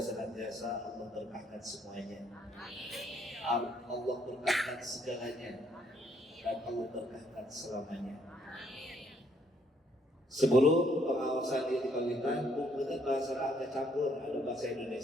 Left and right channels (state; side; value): normal; both; correlation 0.69